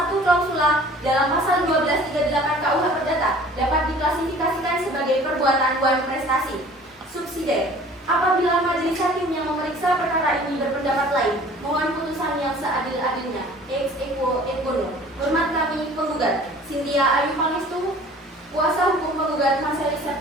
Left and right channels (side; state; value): both; normal; correlation 0.48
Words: klausula dalam pasal 1238 KUH Perdata dapat diklasifikasikan sebagai perbuatan Dewan Prestasi. Subsidiar. Apabila majelis hakim yang memeriksa perkara ini berpendapat lain, mohon putusan yang seadil-adilnya. Ex equo et bono. Hormat kami penggugat Cynthia Ayu Pangestu, kuasa hukum penggugat Marselis